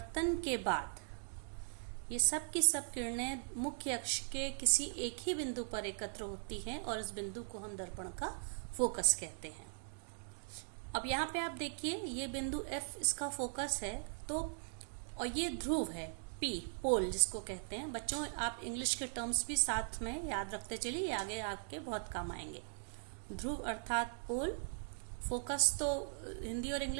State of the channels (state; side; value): silent; left; digital silence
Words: के बाद ये सब की सब किरणें मुख्य अक्ष के किसी एक ही बिंदु पर एकत्र होती हैं और इस बिंदु को हम दर्पण का फोकस कहते हैं। अब यहाँ पे आप देखिए, ये बिंदु F इसका फोकस है, तो और ये ध्रुव है P, पोल जिसको कहते हैं। बच्चों, आप इंग्लिश के टर्म्स भी साथ में याद रखते चलिए, आगे आपके बहुत काम आएंगे। ध्रुव अर्थात पोल, फोकस तो हिंदी और